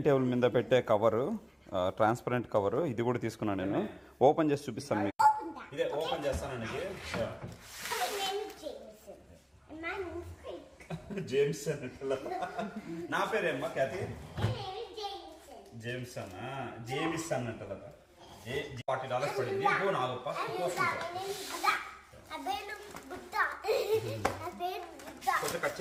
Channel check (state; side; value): identical; both; correlation 1.00